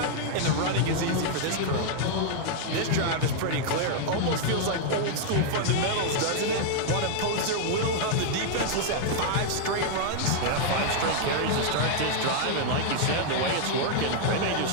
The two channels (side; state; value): both; different; correlation -0.01